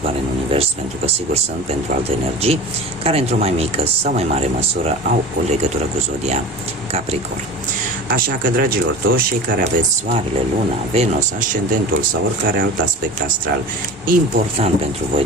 în univers, pentru că sigur sunt pentru alte energii care într-o mai mică sau mai mare măsură au o legătură cu Zodia Capricorn. Așa că, dragilor, toți cei care aveți Soarele, Luna, Venus, Ascendentul sau oricare alt aspect astral important pentru voi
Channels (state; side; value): normal; both; correlation 0.34